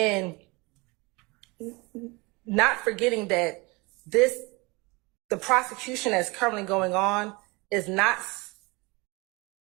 not forgetting that the prosecution that's currently going on is not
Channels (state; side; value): quieter; left; 26.0 dB